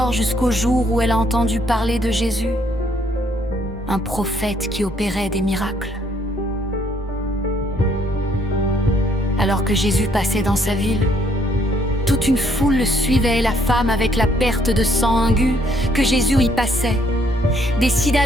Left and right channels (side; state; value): both; normal; correlation 0.67